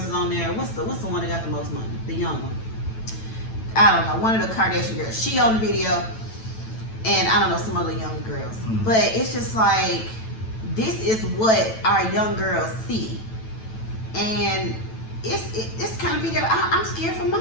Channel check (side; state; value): right; late; 9.1 ms